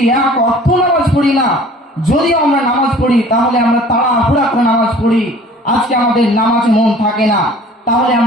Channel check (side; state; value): both; normal; correlation 0.49